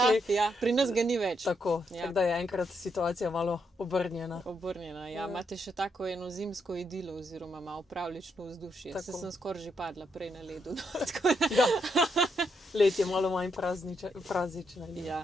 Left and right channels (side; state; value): both; normal; correlation 0.78